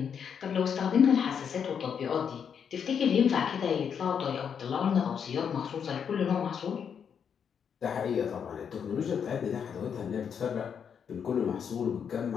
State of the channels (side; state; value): right; quieter; 7.4 dB